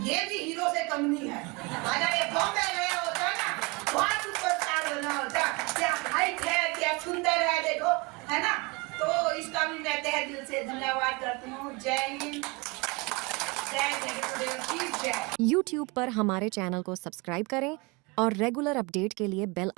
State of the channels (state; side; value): quieter; left; 27.5 dB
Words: ये भी हीरो से कम नहीं है। अगर ये बॉम्बे गया होता ना, वहाँ सुपरस्टार बना होता। क्या हाइट है, क्या सुंदर है, देखो, है ना। तो इसका भी मैं तहे दिल से धन्यवाद करती हूँ। जय हिंद, जय जगदीश की जय। YouTube पर हमारे चैनल को सब्सक्राइब करें और रेगुलर अपडेट के लिए बेल